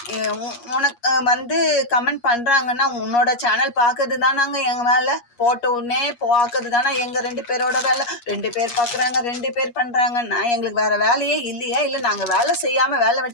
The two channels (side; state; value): right; late; 8.4 ms